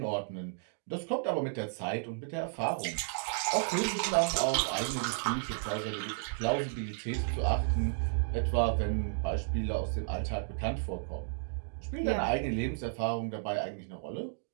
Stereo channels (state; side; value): silent; left; digital silence